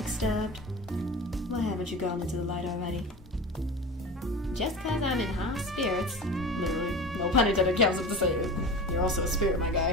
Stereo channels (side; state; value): both; normal; correlation 0.32